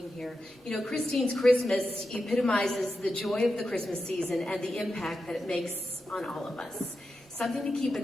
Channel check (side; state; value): both; normal; correlation 0.89